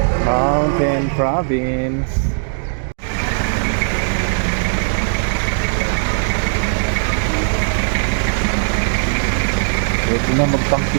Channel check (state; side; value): silent; left; digital silence